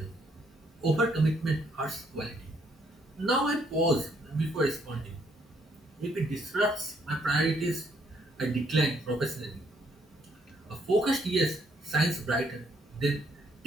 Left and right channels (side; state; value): both; normal; correlation 0.70